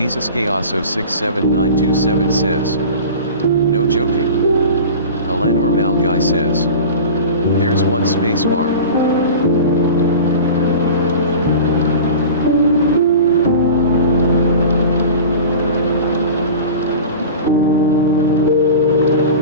Gayaso 67927 says. No joking. Alanor Malguy says. There's one space bar.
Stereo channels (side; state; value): both; inverted; correlation -0.36